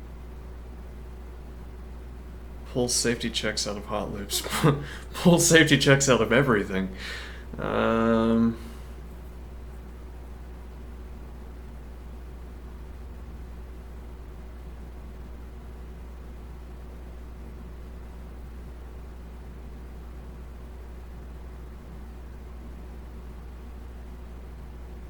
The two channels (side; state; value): both; identical; correlation 1.00